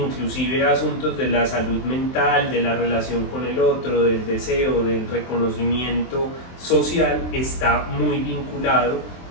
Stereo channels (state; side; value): late; right; 23 ms